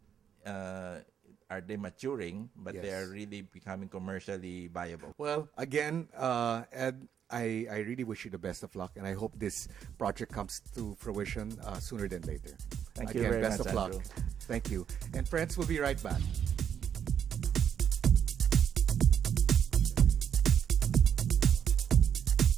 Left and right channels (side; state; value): left; quieter; 8.5 dB